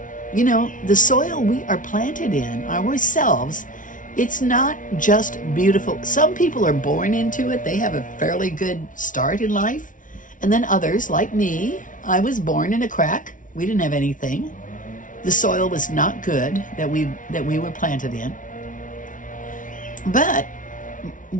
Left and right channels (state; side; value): late; right; 0.38 ms